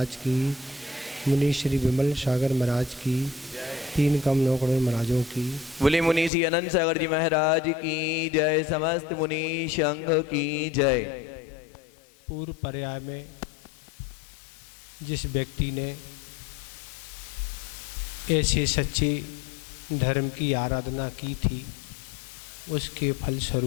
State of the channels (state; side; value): drops out; right; at 6.3 s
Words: की, मुनि श्री विमल सागर महाराज की, 3 कम 9 करोड़ महाराजों की। बोले मुनि श्री अनंत सागर जी महाराज की जय। समस्त मुनि संघ की जय। पूर्व पर्याय में जिस व्यक्ति ने ऐसे सच्चे धर्म की आराधना की थी, उसके